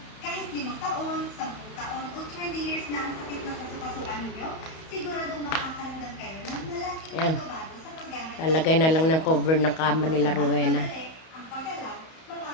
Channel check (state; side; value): late; right; 31 ms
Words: Kahit 5 taon, 10 taon, o 20 years na ang sakit na kasukasuan ninyo, siguradong makakaramdam kayo ng malaking Ayan. pagbabago sa paggamit. Lalagay na lang ng cover ng kama nila Rowena. Ang pagalaw,